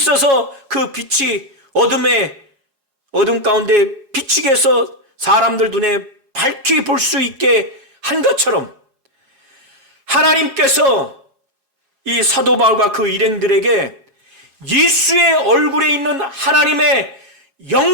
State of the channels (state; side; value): late; left; 4.8 ms